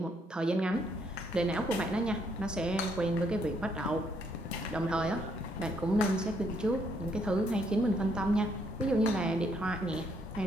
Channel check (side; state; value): both; normal; correlation 0.71